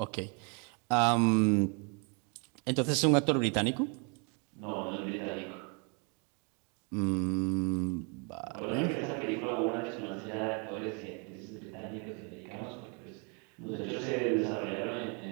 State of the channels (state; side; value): quieter; left; 35.2 dB